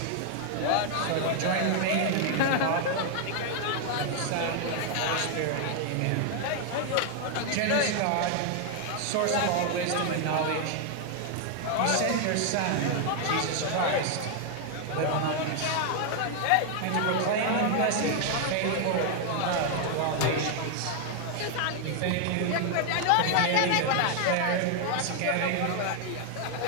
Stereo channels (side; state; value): both; different; correlation 0.00